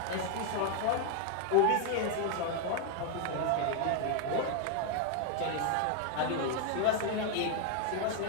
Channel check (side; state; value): both; different; correlation 0.01